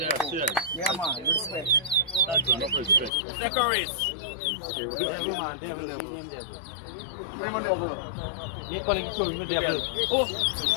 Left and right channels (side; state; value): right; drops out; at 3.1 s